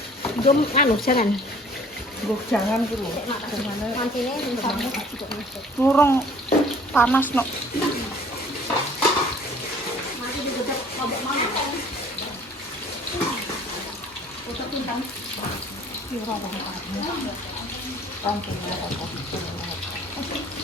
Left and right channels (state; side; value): normal; both; correlation 0.53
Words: gom anu jangan Jangan dulu. mantine Ngurung panas no. mati digodok lombok mana foto pintang